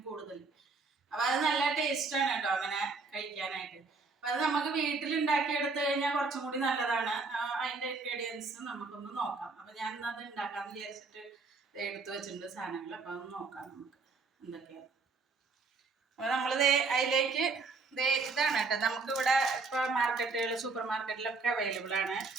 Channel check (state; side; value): quieter; left; 4.2 dB